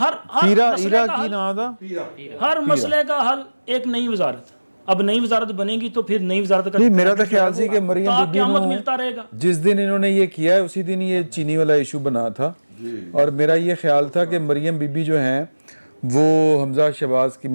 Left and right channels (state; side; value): inverted; both; correlation -1.00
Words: مسئلے کا حل ایک نئی وزارت. اب نئی وزارت بنے گی تو پھر نئی وزارت کا میرا تو خیال سی کہ مریم بی قیامت ملتا رہے گا. جس دن انہوں نے یہ کیا ہے اسی دن یہ چینی والا ایشو بنا تھا، اور میرا یہ خیال تھا کہ مریم بی بی جو ہیں وہ حمزہ شہباز کی